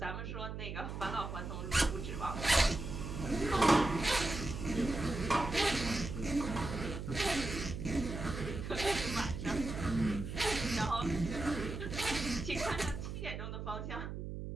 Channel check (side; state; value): right; noise; hum, 6 dB below the sound